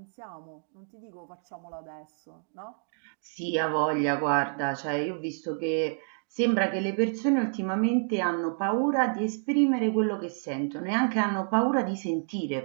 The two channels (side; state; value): left; silent; digital silence